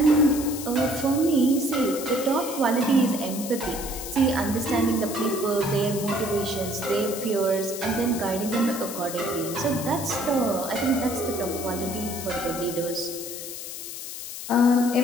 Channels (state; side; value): noise; left; hiss, 9 dB below the sound